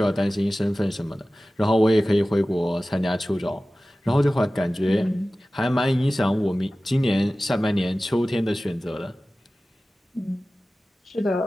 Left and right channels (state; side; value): normal; both; correlation 0.96